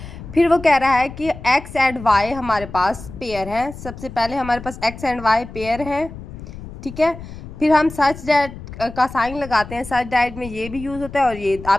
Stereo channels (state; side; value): noise; left; rumble, 13 dB below the sound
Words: फिर वो कह रहा है कि एक्स एंड वाई हमारे पास पेयर हैं। सबसे पहले हमारे पास एक्स एंड वाई पेयर हैं, ठीक है। फिर हम सच दैट का साइन लगाते हैं। सच दैट में ये भी यूज़ होता है और ये